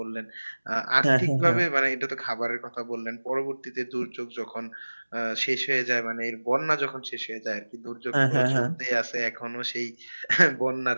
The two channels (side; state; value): both; inverted; correlation -1.00